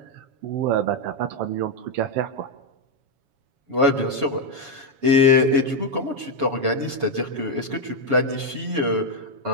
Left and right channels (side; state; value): left; late; 7.2 ms